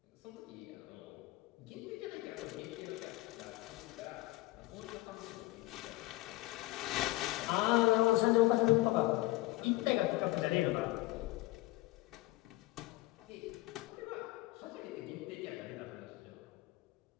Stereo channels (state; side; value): quieter; right; 19.8 dB